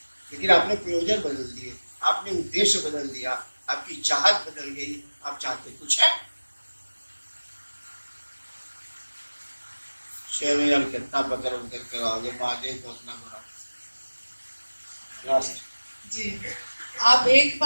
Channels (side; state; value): both; inverted; correlation -1.00